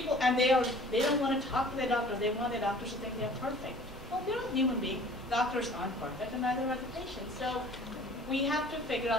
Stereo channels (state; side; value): normal; both; correlation 0.49